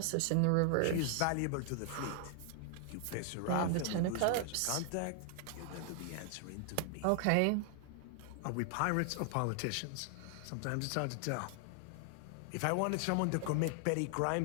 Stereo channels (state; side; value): different; both; correlation 0.00